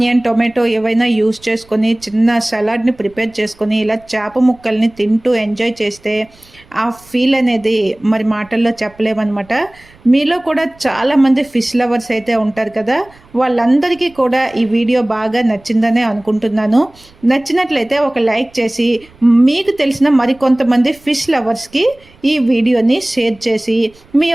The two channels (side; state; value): right; noise; rumble, 28 dB below the sound